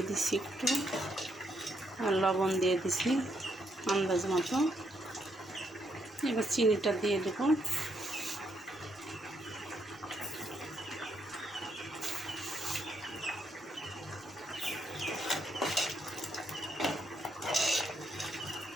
দিচ্ছি একটু, আর লবণ দিয়ে দিছি আন্দাজ মতো। এবার চিনিটা দিয়ে দেব।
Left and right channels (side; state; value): both; normal; correlation 0.76